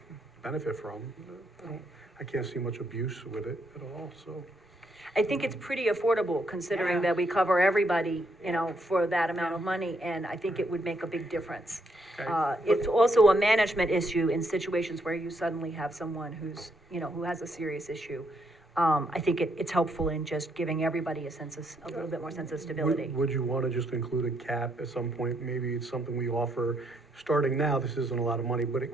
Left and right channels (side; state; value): both; normal; correlation 0.74